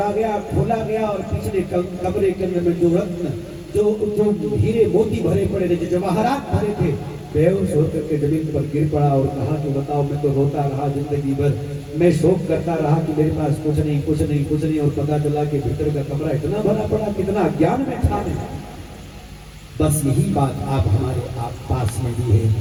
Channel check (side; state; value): both; identical; correlation 1.00